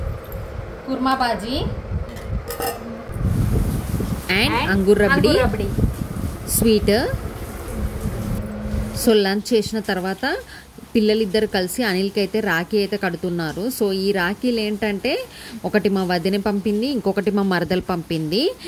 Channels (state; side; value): identical; both; correlation 1.00